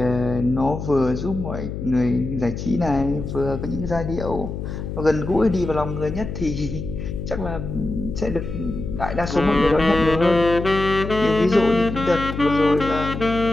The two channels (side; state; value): left; noise; hum, 6 dB below the sound